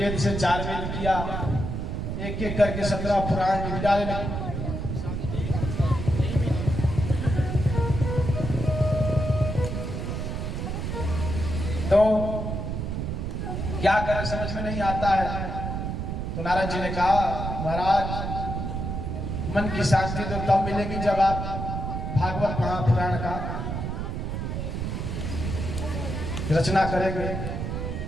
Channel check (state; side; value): noise; right; rumble, 3 dB below the sound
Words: से 4 वेद किया, एक एक करके 17 पुराण लिख डाले। तो क्या करें समझ में नहीं आता है। तो नारद जी ने कहा महाराज मन की शांति तो तब मिलेगी जब आप भागवत महापुराण का रचना करेंगे।